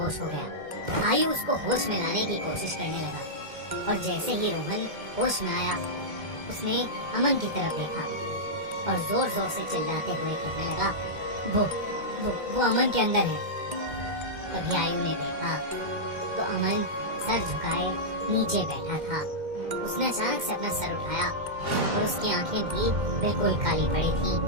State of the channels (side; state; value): left; late; 2.1 ms